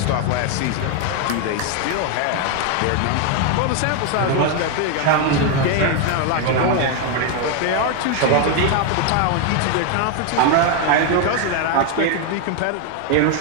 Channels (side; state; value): both; different; correlation 0.01